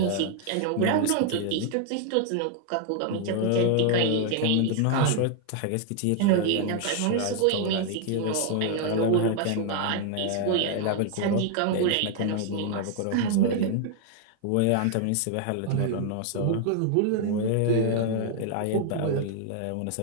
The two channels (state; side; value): different; both; correlation 0.00